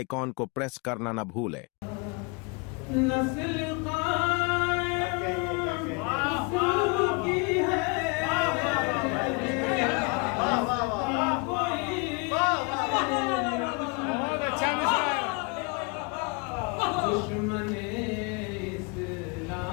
को प्रेस करना न भूलें।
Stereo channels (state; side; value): quieter; right; 30.9 dB